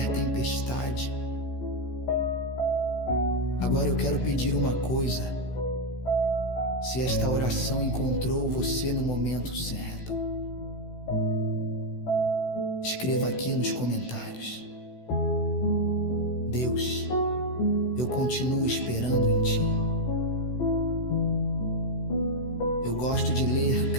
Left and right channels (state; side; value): late; right; 16 ms